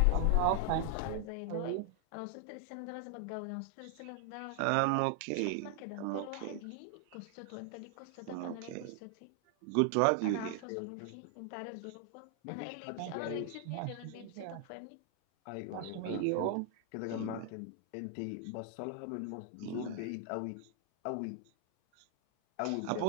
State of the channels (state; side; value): different; both; correlation 0.00